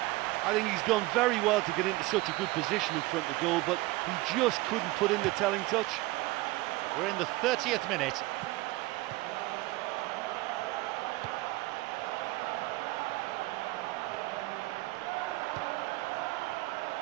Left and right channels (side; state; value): left; quieter; 20.2 dB